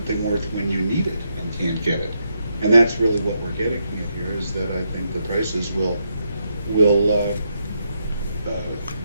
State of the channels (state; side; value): inverted; both; correlation -0.80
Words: worth when you need it and can't get it? And that's really what we're getting at here, is that I think the prices will